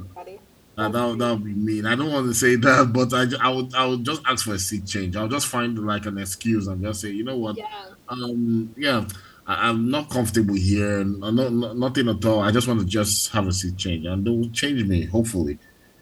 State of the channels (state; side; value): identical; both; correlation 1.00